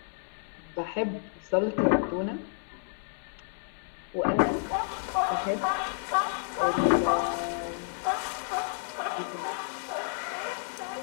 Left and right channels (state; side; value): silent; right; digital silence